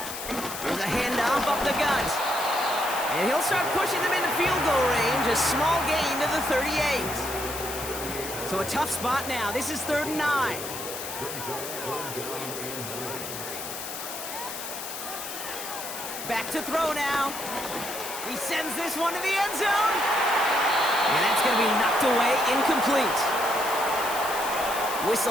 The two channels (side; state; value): left; noise; hiss, 8 dB below the sound